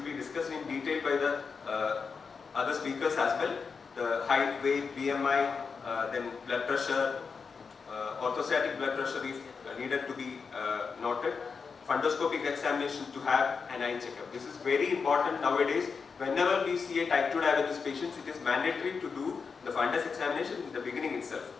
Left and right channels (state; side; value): quieter; right; 5.4 dB